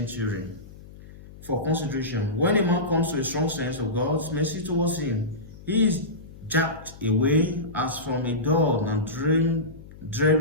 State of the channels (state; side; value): noise; left; hum, 18 dB below the sound